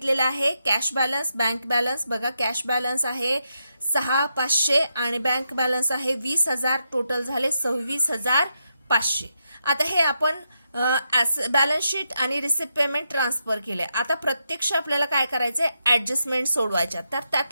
आहे कॅश बॅलन्स, बँक बॅलन्स. बघा, कॅश बॅलन्स आहे 6,500 आणि बँक बॅलन्स आहे 20,000. टोटल झाले 26,500. आता हे आपण बॅलन्स शीट आणि रिसिप्ट पेमेंट ट्रान्सफर केले. आता प्रत्यक्ष आपल्याला काय करायचंय? ऍडजस्टमेंट सोडवायच्या. तर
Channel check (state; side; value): inverted; both; correlation -0.83